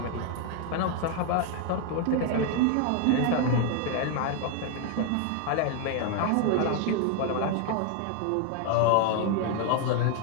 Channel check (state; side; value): different; both; correlation 0.00